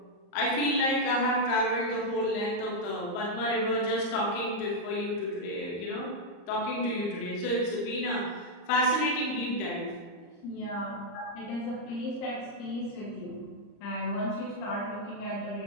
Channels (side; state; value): right; late; 34 ms